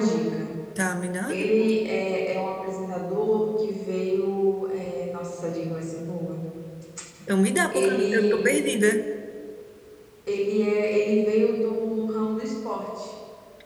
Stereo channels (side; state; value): both; identical; correlation 1.00